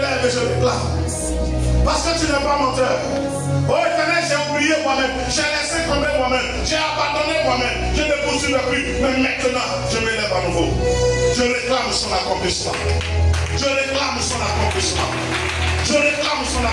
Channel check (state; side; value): identical; both; correlation 1.00